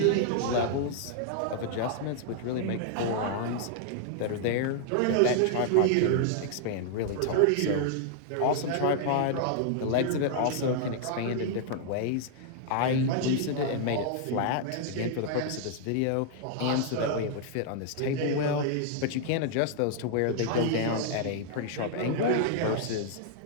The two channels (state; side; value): different; both; correlation -0.01